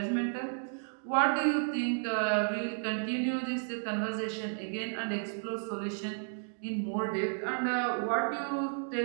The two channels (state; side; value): silent; left; digital silence